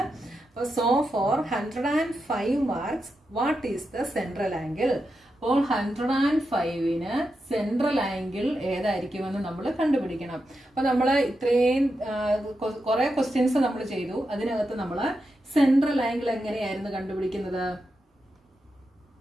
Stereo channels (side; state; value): both; normal; correlation 0.87